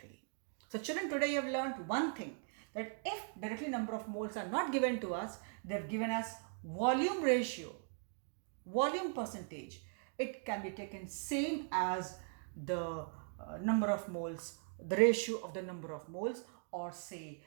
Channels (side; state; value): left; silent; 51 dB below the other